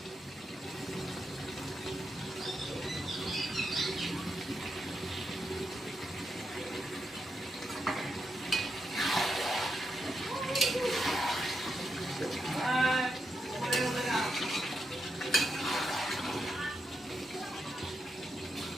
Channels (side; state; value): both; normal; correlation 0.84